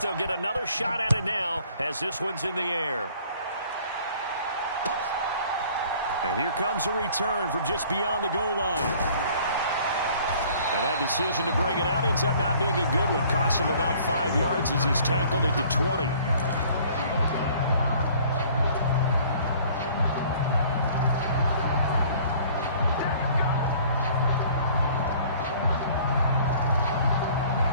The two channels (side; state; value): both; inverted; correlation -0.54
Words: get another shot at it now as this one's in the air. And here comes a return from just beyond the goal line. And That decision to bring it out ends up not being a good one. Costs him about 5 yards as he's tackled at the 20.